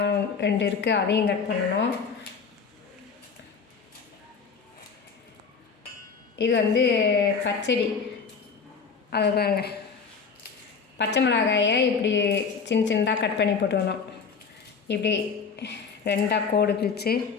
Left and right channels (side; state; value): right; quieter; 5.6 dB